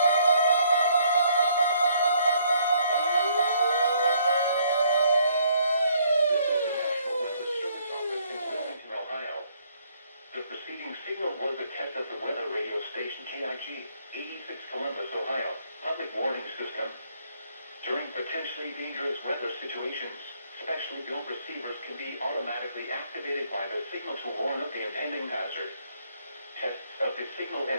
is the National Weather Service office in Wilmington, Ohio. The preceding signal was a test of the weather radio station KIG, 86 Columbus, Ohio, public warning system. During potentially dangerous weather situations, specially built receivers can be automatically activated by the signal to warn of the impending hazard. Tests of the signal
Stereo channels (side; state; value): both; inverted; correlation -0.67